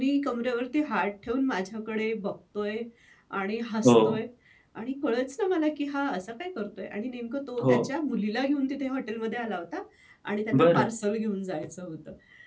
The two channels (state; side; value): identical; both; correlation 1.00